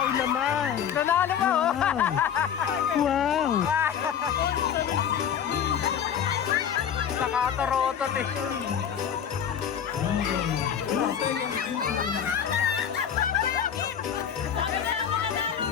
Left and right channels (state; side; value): quieter; right; 8.5 dB